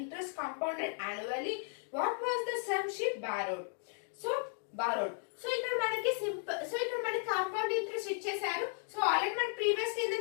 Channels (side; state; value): right; silent; 54 dB below the other